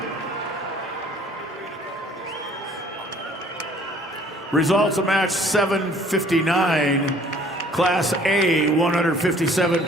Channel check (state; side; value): normal; both; correlation 0.55